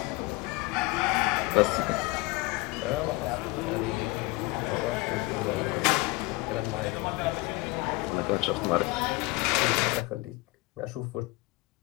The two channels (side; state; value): right; quieter; 22.4 dB